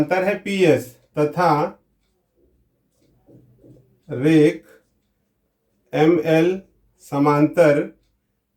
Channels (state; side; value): identical; both; correlation 1.00